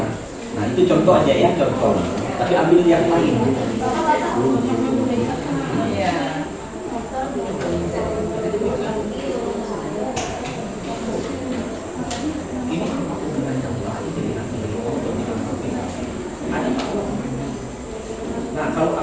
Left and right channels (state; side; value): identical; both; correlation 1.00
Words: Nah, itu contoh aja ya, contoh. Tapi ambil yang lain. Nah, kalau